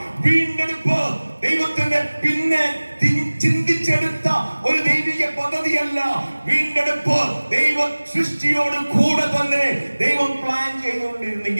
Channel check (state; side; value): inverted; both; correlation -1.00